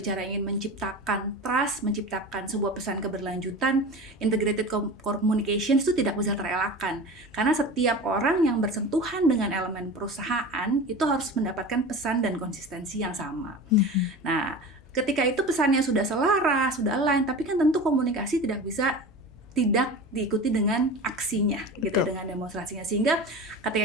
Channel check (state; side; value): normal; both; correlation 0.32